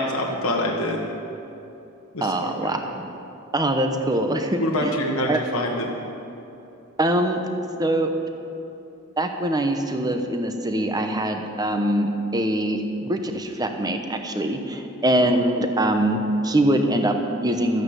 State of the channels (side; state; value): both; normal; correlation 0.50